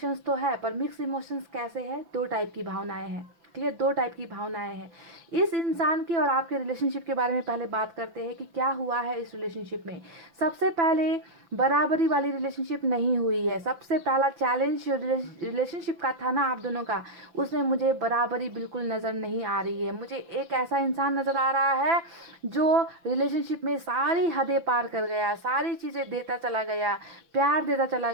तो है, पर मिक्स इमोशंस कैसे है, दो टाइप की भावनाएं हैं। ठीक है, दो टाइप की भावनाएं हैं इस इंसान के और आपके रिलेशनशिप के बारे में। पहले बात करते हैं कि क्या हुआ है इस रिलेशनशिप में। सबसे पहले बराबरी वाली रिलेशनशिप नहीं हुई है। सबसे पहला चैलेंज जो रिलेशनशिप का था ना आप दोनों का, उसमें मुझे बराबरी बिल्कुल नज़र नहीं आ रही है। मुझे एक ऐसा इंसान नज़र आ रहा है जो रिलेशनशिप में सारी हदें पार कर गया, सारी चीज़ें देता चला गया, प्यार देता चला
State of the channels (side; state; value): left; late; 5.9 ms